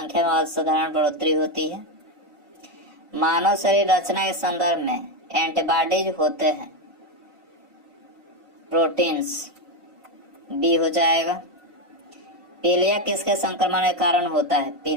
में असाधारण बढ़ोतरी होती है। मानव शरीर रचना के संदर्भ में एंटीबॉडीज होते हैं, प्रोटीन्स, बी हो जाएगा। पीलिया किसके संक्रमण के कारण होता है?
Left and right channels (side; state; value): left; late; 1.5 ms